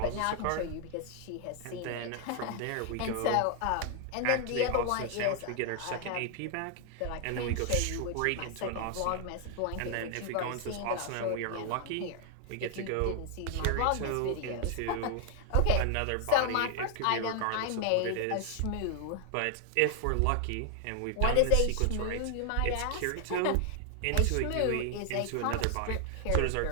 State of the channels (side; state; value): both; different; correlation 0.00